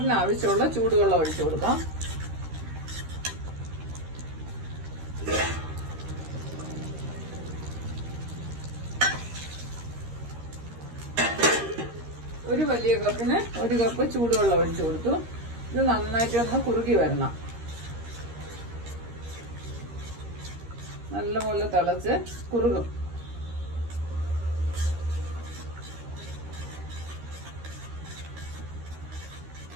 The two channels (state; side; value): late; left; 13 ms